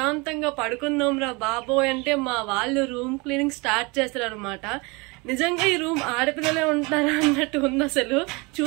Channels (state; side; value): quieter; left; 27.2 dB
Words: పడుకుందాం రా బాబోయ్ అంటే మా వాళ్ళు రూమ్ క్లీనింగ్ స్టార్ట్ చేస్తారు అనమాట. నిజంగా ఈ రూమ్ ఆడపిల్లలే ఉంటారా అన్నట్టు ఉంది. అసలు